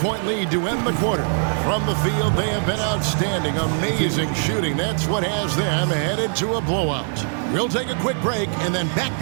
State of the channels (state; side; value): silent; left; 59 dB below the other